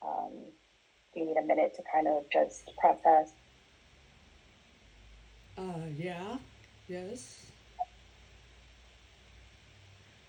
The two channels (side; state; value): both; identical; correlation 1.00